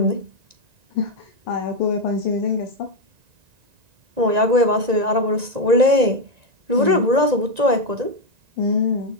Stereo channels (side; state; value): left; late; 1.9 ms